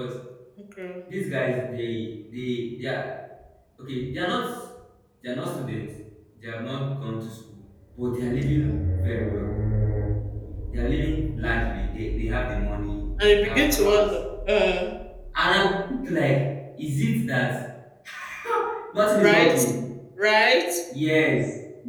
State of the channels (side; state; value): both; identical; correlation 1.00